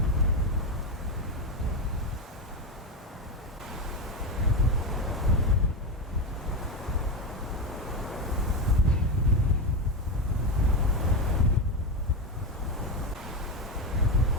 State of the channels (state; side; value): normal; both; correlation 0.13